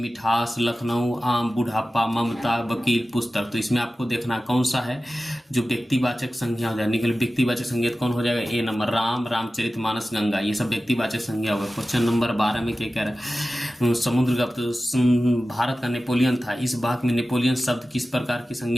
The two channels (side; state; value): both; normal; correlation 0.95